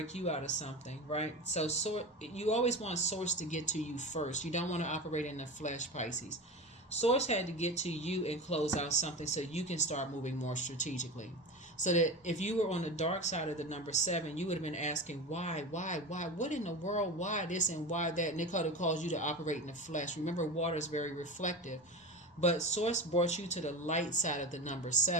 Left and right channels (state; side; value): normal; both; correlation 0.27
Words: you out of something, right? So you always want Source to get to you first. You don't want to operate in the flesh, Pisces. Source had to get to you and close out something so you can start moving more strategically. So that if you were on the dark side of the number 7, you would have been asking, why, what in the world, why this and why that? And it could have caused you to operate in the flesh. Remember, water is very reflective. But Source brought you to the light side of the number